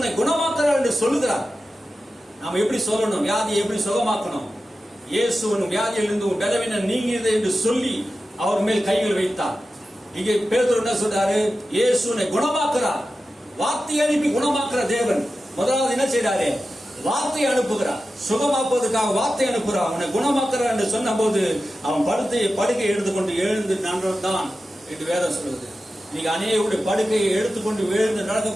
குணமாக்குறார் என்று சொல்லுகிறார். நாம எப்படி சொல்லணும்? வியாதியை எப்படி சுகமாக்கணும்? இயேசுவின் வியாதியிலிருந்து பலவீனம் நீங்கியது என்று சொல்லி அவர் மேல் கைகள் வைத்தார். இங்கே பேதுரு என்ன சொல்றாரு? இயேசுவை குணமாக்குறார். வார்த்தை அனுப்பி குணமாக்குற தேவன் முதலாவது என்ன செய்றாரு? வார்த்தை அனுப்புகிறார். சுகமாக்குவதற்காக வார்த்தை அனுப்புகிறார். அவனை குணமாக்குறார் என்று சொன்ன போது அவன் படுக்கை எடுத்துக்கொண்டு எழுந்து நடந்தான் என்று வேதம் சொல்லுது. நீங்க அநேகருடைய படுக்கையை எடுத்துக்கொண்டு எழுந்து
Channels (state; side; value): normal; both; correlation 0.93